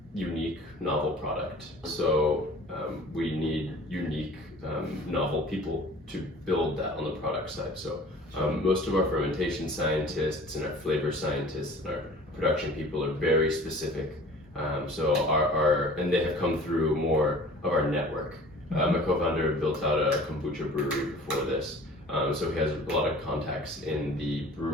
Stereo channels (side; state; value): both; normal; correlation 0.46